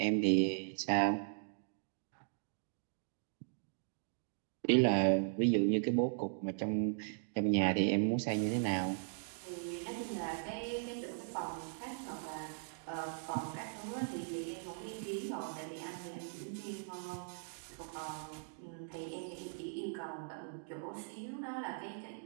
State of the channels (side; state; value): left; silent; digital silence